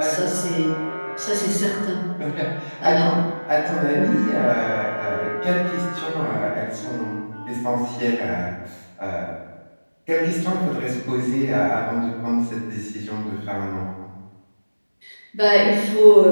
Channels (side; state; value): both; inverted; correlation -1.00